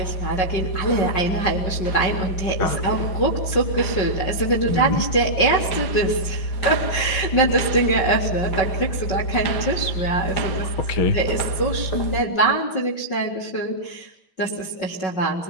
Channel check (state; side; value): late; right; 5.4 ms